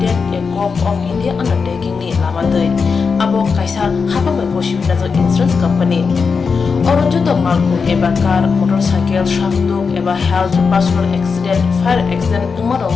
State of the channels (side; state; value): right; quieter; 5.3 dB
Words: a corp of India undertaking ni lamadai abo kaisa haba bai koshi na insurance company oro joto malku eba car motorcycle shakduk eba health personal accident fire accident